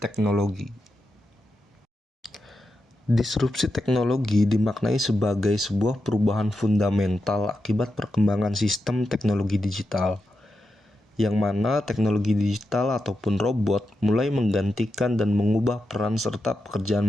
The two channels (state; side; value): normal; both; correlation 0.88